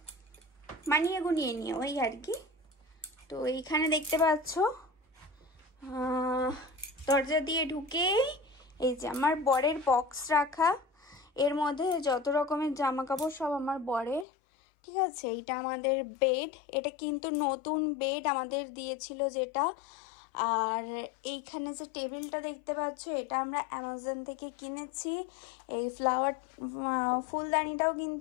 মানিয়ে গুনিয়ে নিয়ে ওই আর কি। তো এইখানে দেখতে পাচ্ছ দরজা দিয়ে ঢুকে এই যে আমার বরের বক্স রাখা, এর মধ্যে যত রকমের জামা কাপড় সব আমার বরের, ঠিক আছে? এইটা আমাদের বেড, এটা কিন্তু নতুন বেড আমাদের দিয়েছিল যেটা। আর এইখানে যে টেবিলটা দেখতে পাচ্ছ, এটা আমরা অ্যামাজন থেকে কিনেছি। এই ফুলদানিটাও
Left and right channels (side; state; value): right; drops out; at 14.2 s